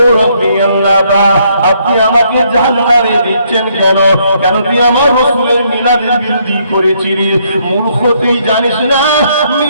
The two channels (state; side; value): inverted; both; correlation -0.70